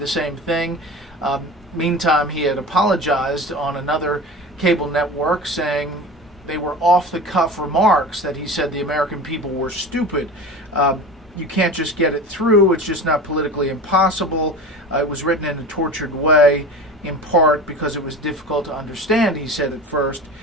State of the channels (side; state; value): both; normal; correlation 0.33